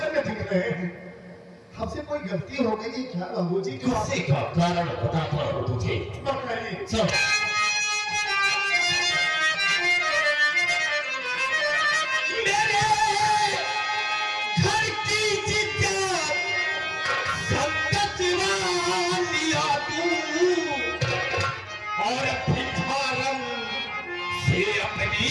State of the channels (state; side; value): identical; both; correlation 1.00